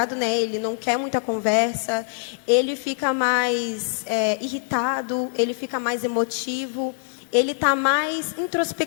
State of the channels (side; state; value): right; silent; digital silence